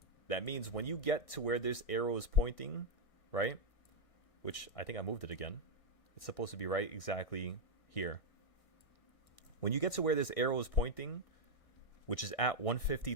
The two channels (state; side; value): late; right; 1.6 ms